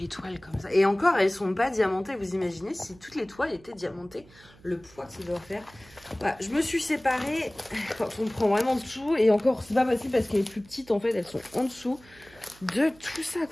toiles comme ça. Et encore, elles sont pas diamantées. Vous imaginez si toutes les toiles étaient diamantées, le poids que ça doit faire. Voilà, je me suis séparée quand on prend vraiment tout. Et encore, c'est pas possible parce qu'elles sont plus petites en fait. Elles sont en dessous de tout ça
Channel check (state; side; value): noise; right; hum, 25 dB below the sound